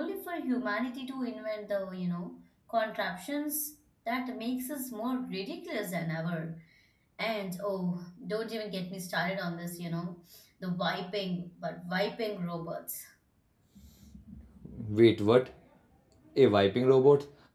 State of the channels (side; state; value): both; identical; correlation 1.00